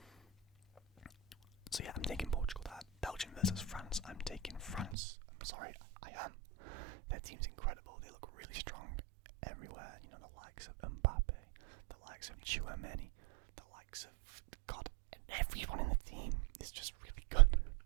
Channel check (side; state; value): left; drops out; at 5.0 s